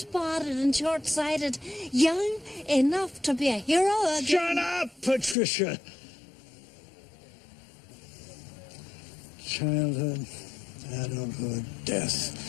and short-sighted. Young enough to be a hero again. Shut up, Patricia! Childhood, adulthood,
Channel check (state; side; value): drops out; right; at 5.4 s